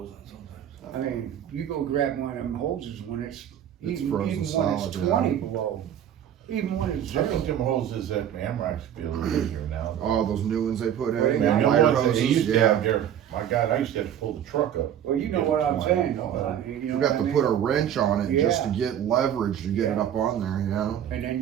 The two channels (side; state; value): left; quieter; 10.0 dB